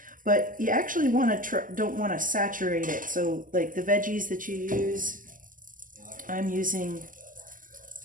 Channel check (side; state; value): left; late; 0.39 ms